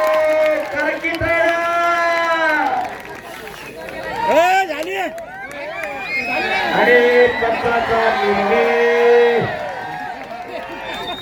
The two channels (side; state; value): both; identical; correlation 1.00